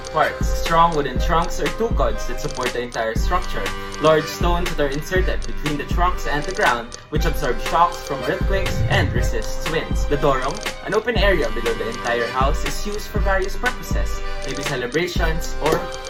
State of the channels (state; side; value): identical; both; correlation 1.00